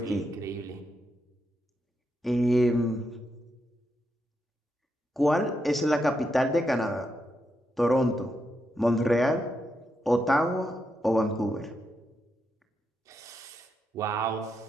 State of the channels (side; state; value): both; normal; correlation 0.83